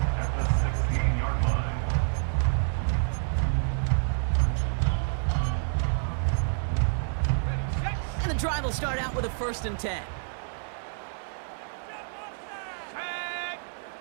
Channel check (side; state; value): left; silent; digital silence